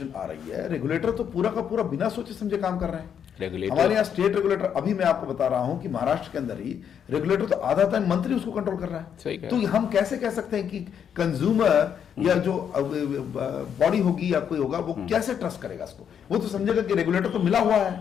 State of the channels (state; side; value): quieter; right; 8.2 dB